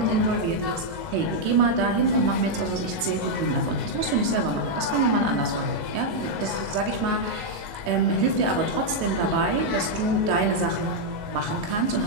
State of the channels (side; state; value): left; late; 19 ms